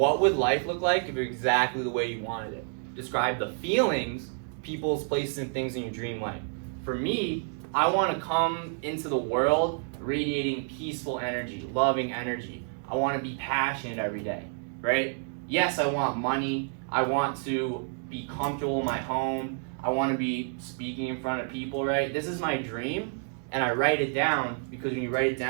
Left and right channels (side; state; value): left; silent; 59 dB below the other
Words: would life look like if it was exactly the way you wanted it? Describe the feelings, people's places, and things in your dream life. For me, I want to come into the world radiating peaceful energy, loving energy. I want to be passionate every day, right? Yes, I want money. I want to be comfortable in my home. I want to be speaking in front of people, right? This is my dream, and I write it down, because when you write it